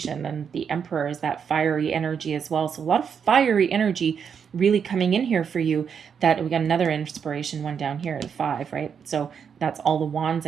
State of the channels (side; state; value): left; quieter; 7.1 dB